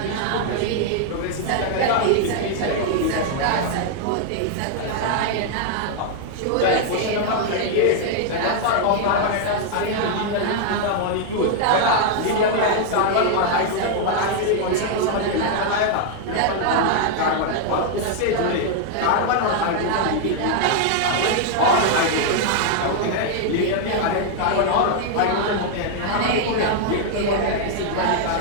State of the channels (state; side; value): different; both; correlation 0.00